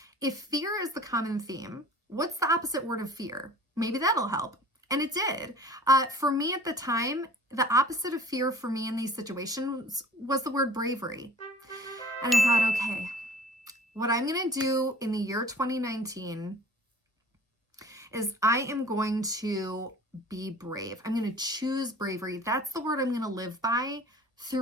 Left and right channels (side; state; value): both; normal; correlation 0.46